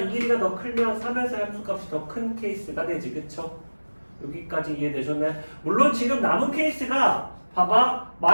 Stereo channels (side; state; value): both; inverted; correlation -1.00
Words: 길이가 더 크면 3에서 함수값이 더 큰 케이스가 되지. 그쵸? 여기까지 이해되셨나요? 물론 지금 남은 케이스가 봐봐.